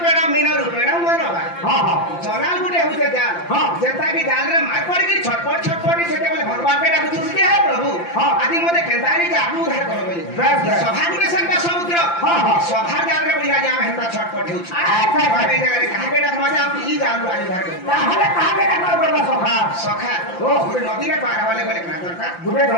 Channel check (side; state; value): right; late; 5.8 ms